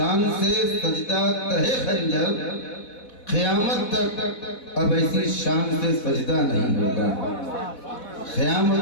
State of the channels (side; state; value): right; late; 4.1 ms